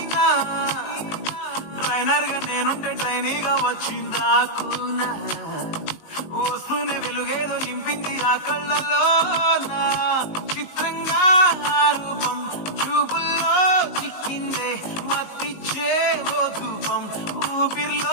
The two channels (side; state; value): right; late; 19 ms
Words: ట్రైనర్ గా నేనుంటే ట్రైనీగా వచ్చిందా కూనా, వస్తూనే వెలుగేదో నింపింది ఆ కళ్ళలో నా. చిత్రంగా ఆ రూపం చూపుల్లో చిక్కిందే, మత్తిచ్చే ఓ ధూపం